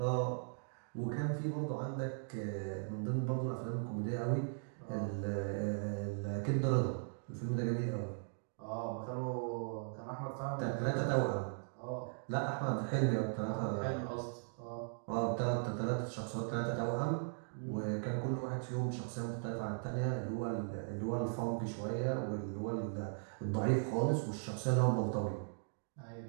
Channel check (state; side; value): silent; left; digital silence